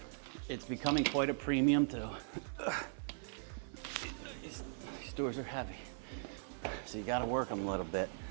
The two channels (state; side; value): silent; left; 51 dB below the other